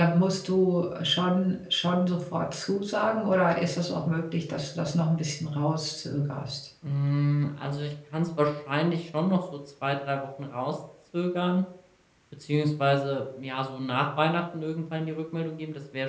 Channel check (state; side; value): identical; both; correlation 1.00